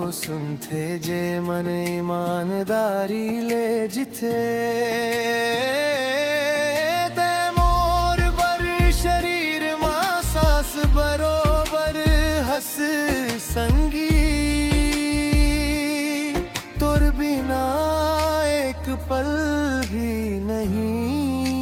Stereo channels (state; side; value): identical; both; correlation 1.00